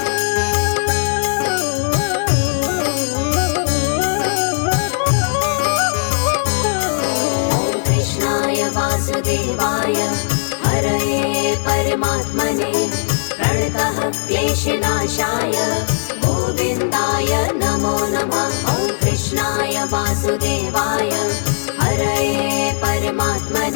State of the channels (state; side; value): silent; right; digital silence